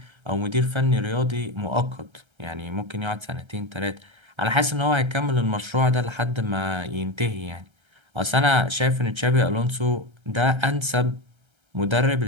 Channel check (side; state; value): left; late; 1.3 ms